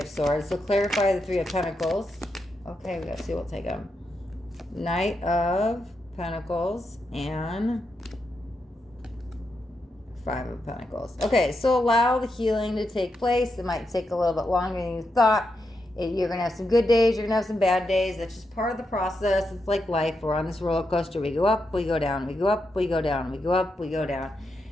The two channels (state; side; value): normal; both; correlation 0.84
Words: Swords. So clarify the Three of Pentacles. Okay, we gotta see, we'll take them. Knight of Pentacles and Five of Pentacles. Okay, so allow the healing to take place. It might take a little bit longer than you thought. You're going to have some good days. You're going to have some bad days. That's just part of the process. It's like life. We're on this roller coaster. We go up, we go down. We go up, we go down. We go up, we go down.